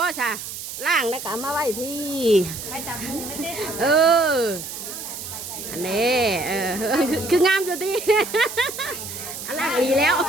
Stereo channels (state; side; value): noise; right; hiss, 9 dB below the sound